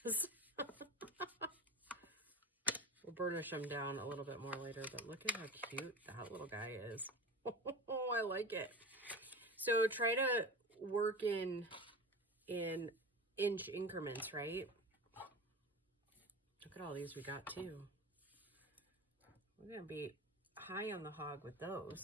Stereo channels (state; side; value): normal; both; correlation 0.30